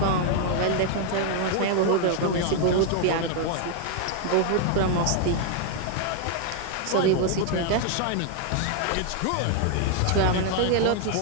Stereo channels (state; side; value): different; both; correlation 0.00